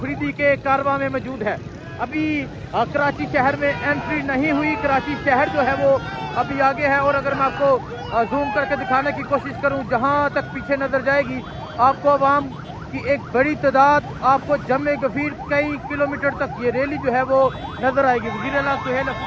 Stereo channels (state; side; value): identical; both; correlation 1.00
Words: के कारवां में मौजूद है। अभी कराची शहर में एंट्री नहीं हुई, कराची शहर जो है वो अभी आगे है। और अगर मैं आपको जूम करके दिखाने की कोशिश करूं, जहां तक पीछे नजर जाएगी आपको अवाम की एक बड़ी तादाद, आपको जमे गफीर कई किलोमीटर तक ये रैली जो है वो नजर आएगी। वज़ीर आला सुहेल